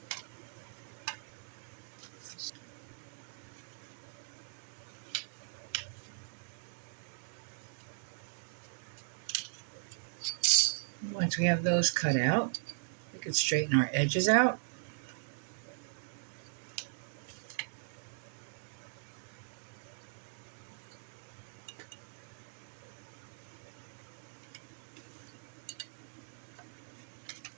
Once we have those cut out, we can straighten our edges out.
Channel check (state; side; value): silent; left; digital silence